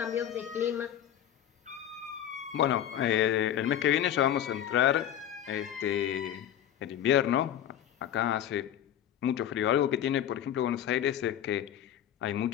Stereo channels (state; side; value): quieter; right; 10.6 dB